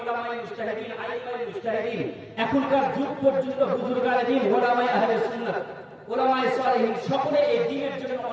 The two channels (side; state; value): both; identical; correlation 1.00